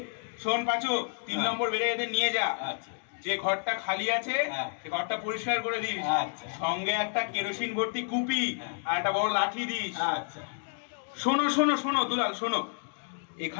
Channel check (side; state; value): right; silent; 58 dB below the other